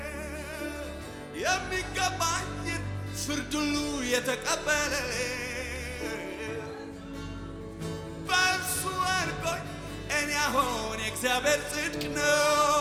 የሚገባኝን ፍርድ ሁሉ የተቀበለልኝ በእርሱ አድርጎኝ እኔ አሁን የእግዚአብሔር ጽድቅ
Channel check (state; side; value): identical; both; correlation 1.00